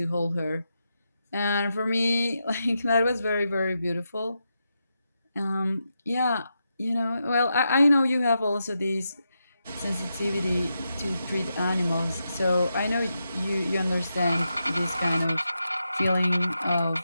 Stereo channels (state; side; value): inverted; both; correlation -0.86